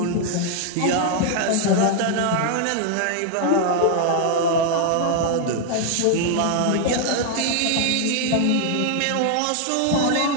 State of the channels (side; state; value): both; different; correlation 0.00